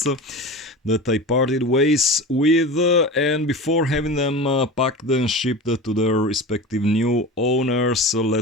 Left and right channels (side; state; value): both; normal; correlation 0.31